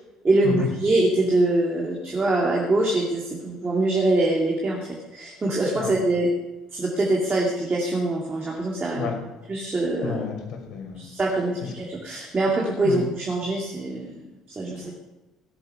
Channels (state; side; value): normal; both; correlation 0.75